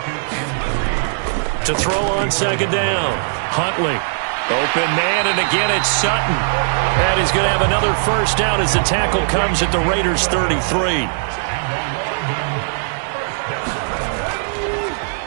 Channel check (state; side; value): silent; left; digital silence